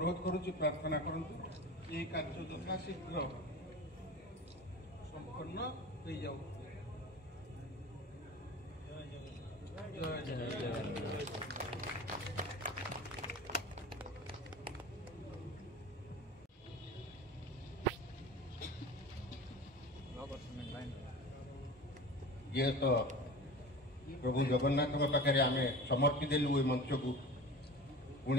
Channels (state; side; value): normal; both; correlation 0.35